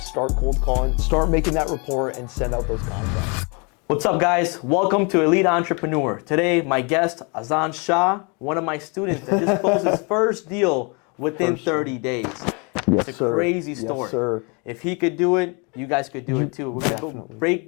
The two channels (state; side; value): quieter; right; 32.4 dB